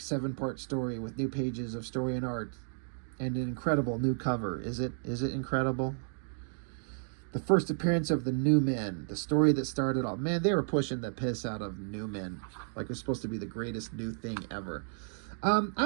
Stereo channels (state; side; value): silent; left; digital silence